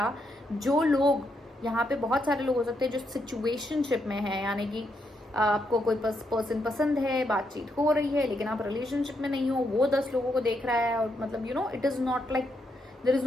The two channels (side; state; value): both; normal; correlation 0.79